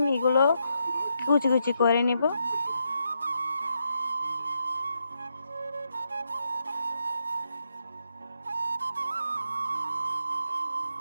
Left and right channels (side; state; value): both; inverted; correlation -0.81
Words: এগুলো কুচি কুচি করে নিব।